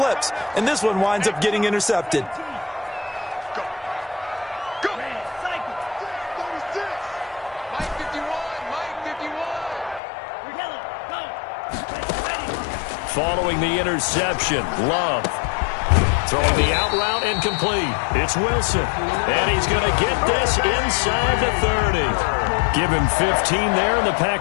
And this one winds up getting intercepted. Following the interception, Love. Throwing the out route incomplete. It's Wilson. And he's going to get this inside the 30. Give him 15 there, and the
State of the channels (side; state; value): right; drops out; at 10.0 s